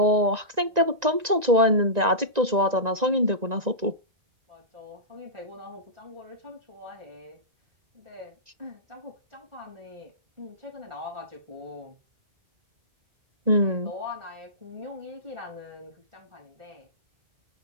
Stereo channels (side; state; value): left; late; 1.9 ms